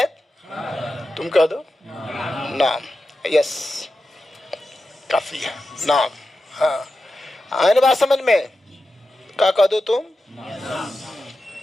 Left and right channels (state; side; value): normal; both; correlation 0.91